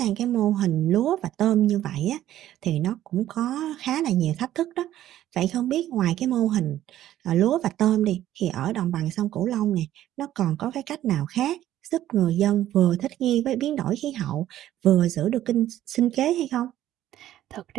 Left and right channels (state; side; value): quieter; left; 12.9 dB